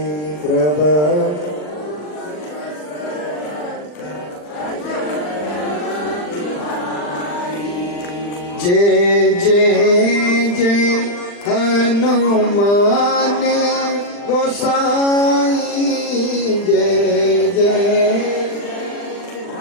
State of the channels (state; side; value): late; right; 40 ms